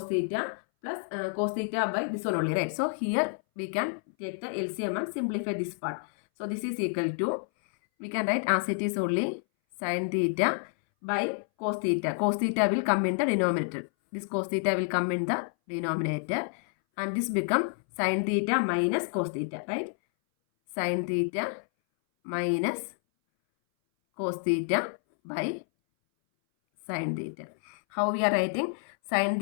theta plus cos theta by this one only, right? So here we can take the LCM and simplify this part. So this is equal to, we can write as it is only sin theta by cos theta. Cos theta will come in the denominator. This cos theta will come in the denominator and this become sin theta minus cos theta, right? Sin theta minus cos theta by sin theta. How we are writing? Sin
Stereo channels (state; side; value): silent; right; 59 dB below the other